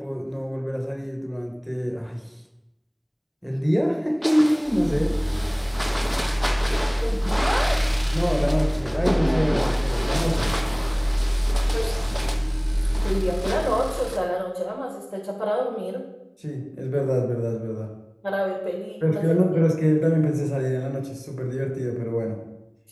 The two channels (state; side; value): identical; both; correlation 1.00